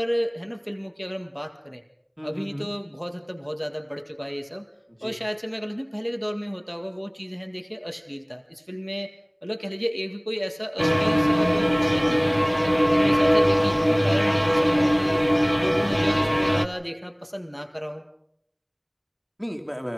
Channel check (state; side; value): identical; both; correlation 1.00